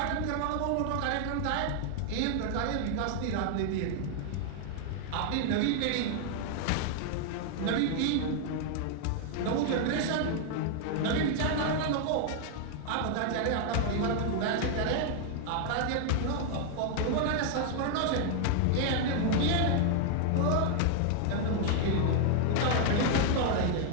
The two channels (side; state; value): both; different; correlation 0.00